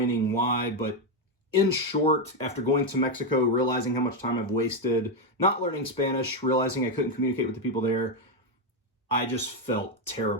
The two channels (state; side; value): normal; both; correlation 0.06